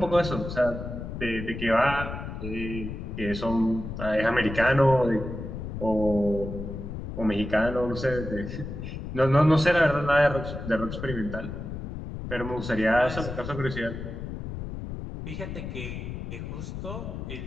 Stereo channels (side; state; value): left; noise; rumble, 7 dB below the sound